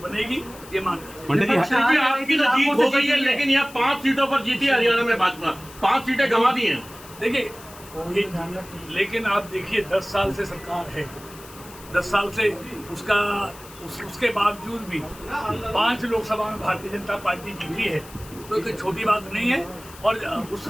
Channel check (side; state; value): left; noise; hiss, 19 dB below the sound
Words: बनेगी, ये मान लीजिए। आपकी तो जीत हो गई है, लेकिन यहाँ 5 सीटों पर जीती हरियाणा में भाजपा, 5 सीटें गंवा दी हैं। देखिए, लेकिन आप देखिए 10 साल से सरकार है, 10 साल से उसके बावजूद भी 5 लोकसभा में भारतीय जनता पार्टी जीती है। तो कोई छोटी बात नहीं है। और